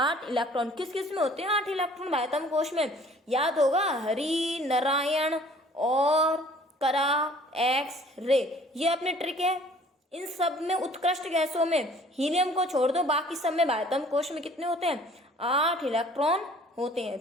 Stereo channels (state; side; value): normal; both; correlation 0.53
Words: इलेक्ट्रॉन। किस किस में होते हैं 8 इलेक्ट्रॉन बाह्यतम कोश में, याद होगा, हरि, नारायण और करा, एक्स, रे। ये अपने ट्रिक है। इन सब में उत्कृष्ट गैसों में हीलियम को छोड़ दो, बाकी सब में बाह्यतम कोश में कितने होते हैं, 8 इलेक्ट्रॉन होते